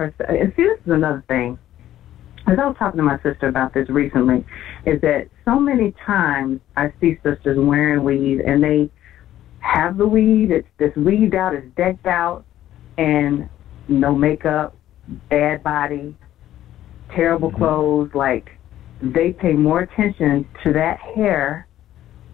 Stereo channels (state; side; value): quieter; right; 12.8 dB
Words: And see, this is another thing. As I was talking to my sister about this recently, is that so many times I see sisters wearing weave, and they have the weave, it's weaved out, it's decked out, and no makeup, bad body, terrible clothes. Like, they pay more attention to that hair